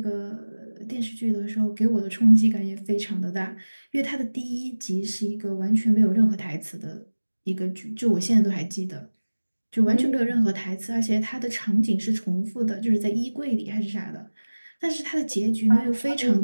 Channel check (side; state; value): both; inverted; correlation -1.00